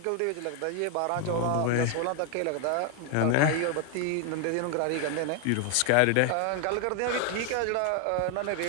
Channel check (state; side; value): different; both; correlation 0.01